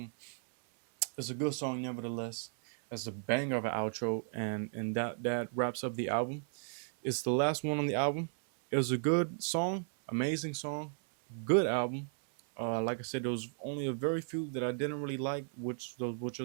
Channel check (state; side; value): silent; left; 55 dB below the other